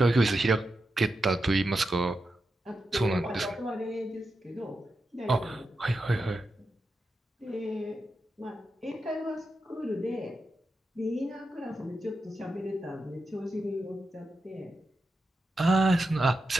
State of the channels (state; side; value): normal; both; correlation 0.88